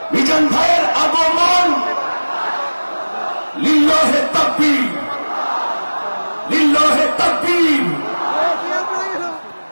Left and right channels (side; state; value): both; inverted; correlation -1.00